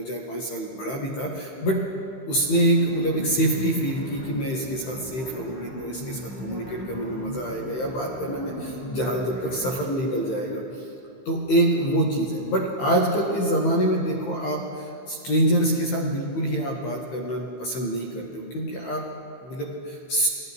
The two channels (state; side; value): late; right; 15 ms